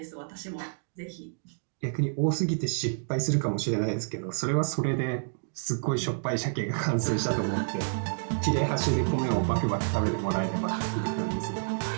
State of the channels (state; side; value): silent; left; digital silence